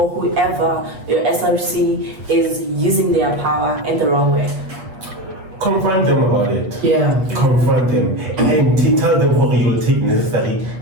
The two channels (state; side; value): late; left; 8.3 ms